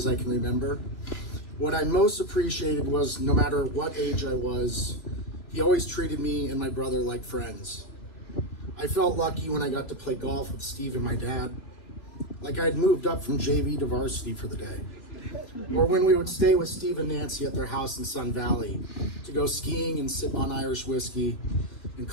I can remember. What I most appreciated was no matter what age I was, he always treated me and my brother like friends. I felt lucky when I got to play golf with Steve and my dad, like I had moved up from JV to varsity for the day. Or when we would stay with Steve and Nancy at their house in Sun Valley to go skiing and sip on Irish whiskey and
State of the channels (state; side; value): late; right; 3.0 ms